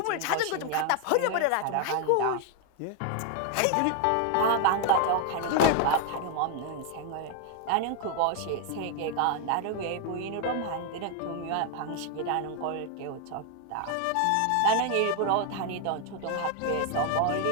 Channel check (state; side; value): different; both; correlation 0.01